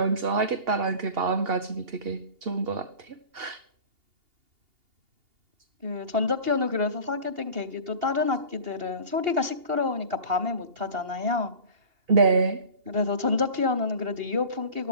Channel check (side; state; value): left; late; 2.8 ms